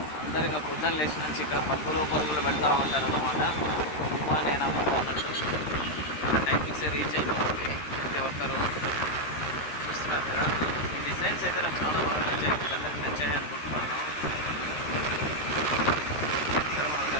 అందరిగా పొద్దున్న లేచి నుంచి ఇక్కడ పరుగులు పెడతా ఉంటారు అనమాట. నేను అమ్ముతానంటే టైమింగ్స్ రీచ్ అయిపోతుంది ప్రతి ఒక్కరు. చూస్తున్నారు కదా, ఈ డిజైన్స్ అయితే నాకు చాలా బాగా నచ్చాయి. అందరికి నచ్చాయి అనుకుంటున్నాను. ఇక్కడ మన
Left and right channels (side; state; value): right; late; 13 ms